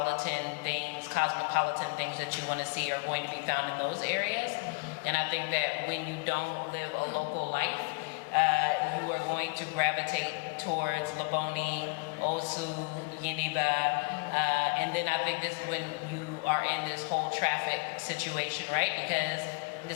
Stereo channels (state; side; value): quieter; right; 29.8 dB